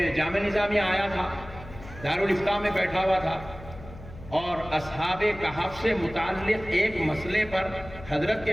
جامعہ نظامیہ آیا تھا، دارالفتہ میں بیٹھا ہوا تھا، اور اصحاب کہف سے متعلق ایک مسئلے پر حضرت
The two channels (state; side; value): noise; left; hum, 16 dB below the sound